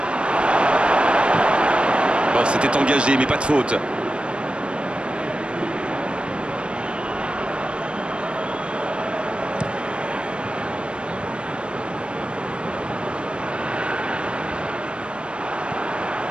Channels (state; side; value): late; left; 0.057 ms